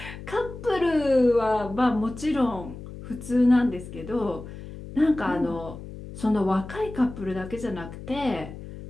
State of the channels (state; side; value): noise; left; hum, 13 dB below the sound